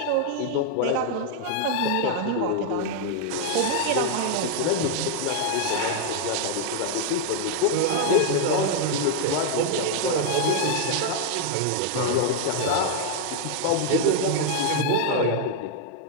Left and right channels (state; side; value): different; both; correlation 0.00